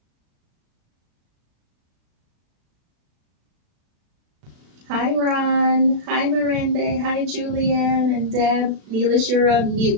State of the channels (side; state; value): left; late; 36 ms